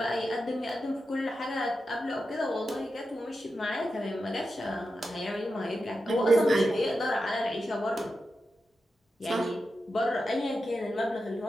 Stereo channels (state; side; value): normal; both; correlation 0.90